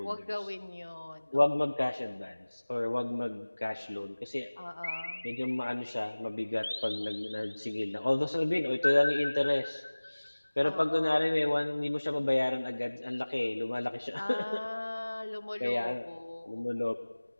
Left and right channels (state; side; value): inverted; both; correlation -1.00